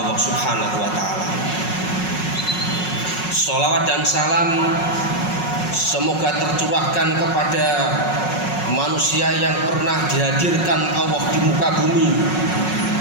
Subhanahu wa ta'ala. Sholawat dan salam semoga tercurahkan kepada manusia yang pernah dihadirkan Allah di muka bumi,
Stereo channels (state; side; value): late; right; 5.5 ms